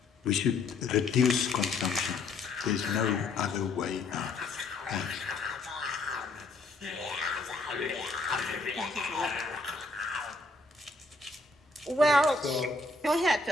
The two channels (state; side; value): quieter; right; 3.4 dB